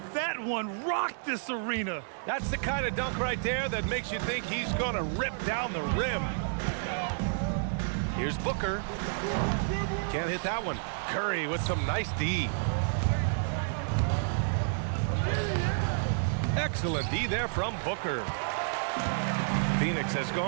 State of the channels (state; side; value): silent; left; digital silence